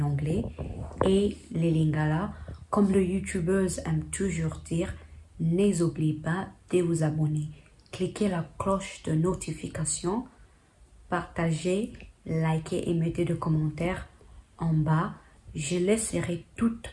et les lingala. Comme le youtubeuse aime toujours dire, n'oubliez pas de vous abonner. Cliquez la cloche de notification, partagez, likez et mettez des commentaires en bas. Je laisserai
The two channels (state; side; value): identical; both; correlation 1.00